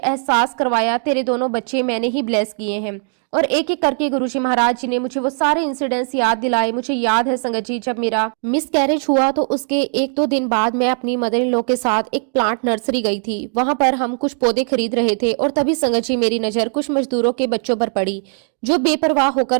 करवाया, तेरे दोनों बच्चे मैंने ही ब्लेस किए हैं। और एक एक करके गुरुजी महाराज जी ने मुझे वो सारे इंसिडेंट्स याद दिलाए। मुझे याद है संगत जी, जब मेरा मिसकैरेज हुआ तो उसके 1-2 दिन बाद मैं अपनी मदर इन लॉ के साथ एक प्लांट नर्सरी गई थी। वहां पर हम कुछ पौधे खरीद रहे थे और तभी संगत जी मेरी नजर कुछ मजदूरों के बच्चों पर पड़ी जो बेपरवाह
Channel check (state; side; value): silent; left; 56 dB below the other